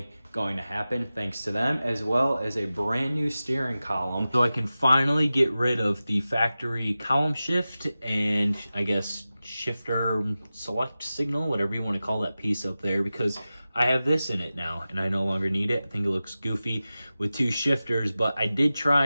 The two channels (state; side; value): inverted; both; correlation -0.95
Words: going to happen thanks to them, as well as a brand new steering column. So I can finally get rid of the factory column shift and I guess shifter select signal, whatever you want to call that piece up there, because I have this in it now and I no longer need it. I think it looks goofy with two shifters, but I did